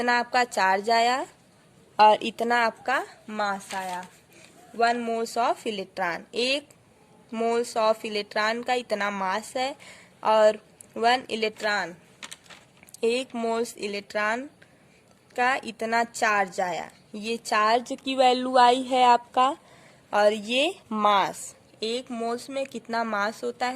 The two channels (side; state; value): both; identical; correlation 1.00